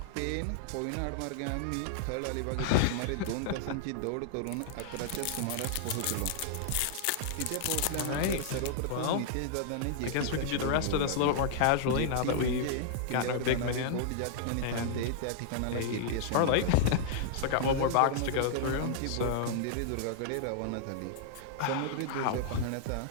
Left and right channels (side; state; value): both; different; correlation -0.01